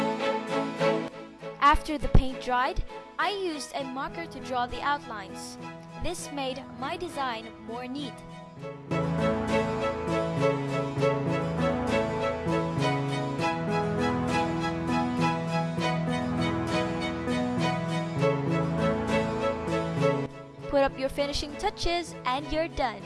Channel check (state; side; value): identical; both; correlation 1.00